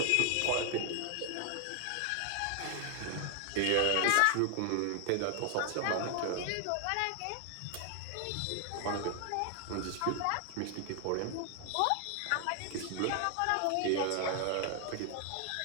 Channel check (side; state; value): both; different; correlation 0.00